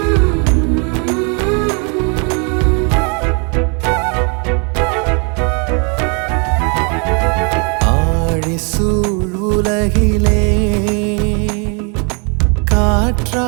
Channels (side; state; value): left; quieter; 35.4 dB